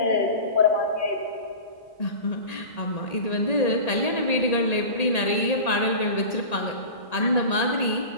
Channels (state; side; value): late; right; 1.8 ms